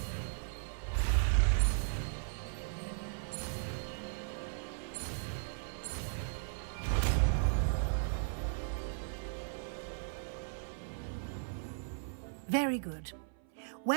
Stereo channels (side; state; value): left; silent; 53 dB below the other